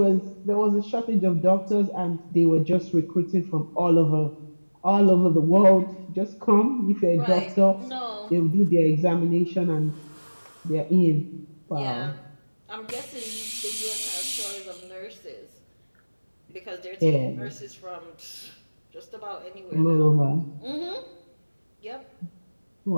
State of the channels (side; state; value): both; inverted; correlation -1.00